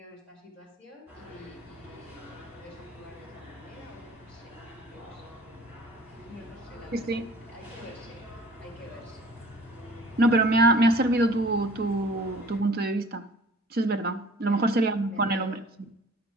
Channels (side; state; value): both; normal; correlation 0.49